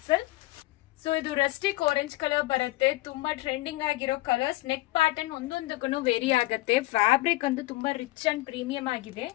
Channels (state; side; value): quieter; right; 18.8 dB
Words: ಸೊ ಇದು ರಸ್ಟಿಕ್ ಆರೆಂಜ್ ಕಲರ್ ಬರುತ್ತೆ. ತುಂಬಾ ಟ್ರೆಂಡಿಂಗ್ ಆಗಿರೋ ಕಲರ್ಸ್. ನೆಕ್ ಪ್ಯಾಟರ್ನ್ ಒಂದೊಂದಕ್ಕೂ ವೇರಿ ಆಗುತ್ತೆ. ಫ್ಯಾಬ್ರಿಕ್ ಅಂತೂ ತುಂಬಾ ರಿಚ್ ಅಂಡ್ ಪ್ರೀಮಿಯಂ ಆಗಿದೆ.